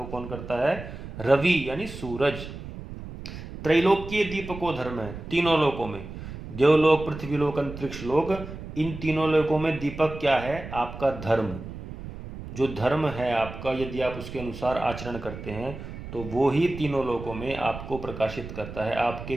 कौन करता है? रवि यानी सूरज। त्रैलोक्य दीपको धर्म है, तीनों लोकों में, देवलोक, पृथ्वीलोक, अंतरिक्ष लोक, इन तीनों लोकों में दीपक क्या है? आपका धर्म। जो धर्म है आपका, यदि आप उसके अनुसार आचरण करते हैं तो वो ही तीनों लोकों में आपको प्रकाशित करता है, आपके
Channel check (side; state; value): right; noise; rumble, 11 dB below the sound